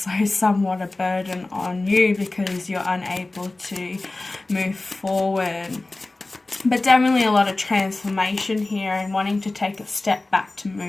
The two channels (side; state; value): right; quieter; 3.0 dB